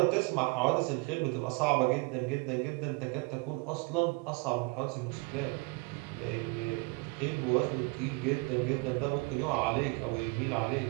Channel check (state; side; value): quieter; left; 28.2 dB